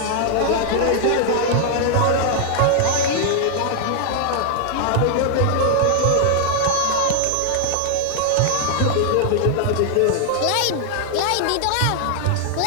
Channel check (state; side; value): different; both; correlation 0.00